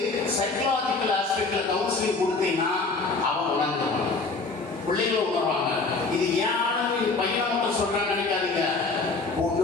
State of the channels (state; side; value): quieter; right; 3.8 dB